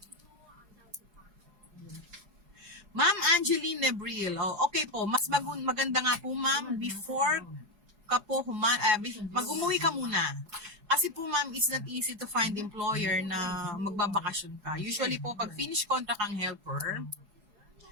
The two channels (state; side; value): late; left; 4.8 ms